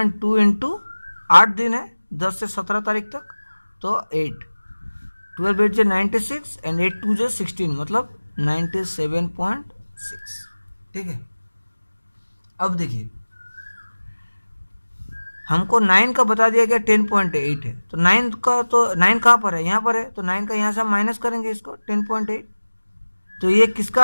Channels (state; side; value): inverted; both; correlation -1.00